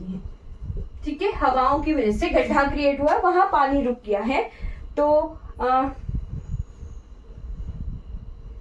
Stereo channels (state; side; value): identical; both; correlation 1.00